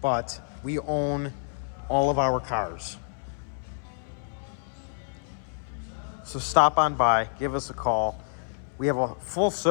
but we own all of our cars. So stop on by, give us a call. We have a full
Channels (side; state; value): right; silent; 59 dB below the other